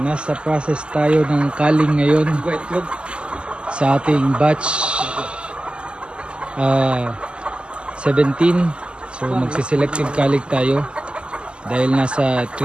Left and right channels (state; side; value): late; left; 0.051 ms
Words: process tayo ng culling ngayon sa ating batch 17. So, magsiselective culling tayo dahil nasa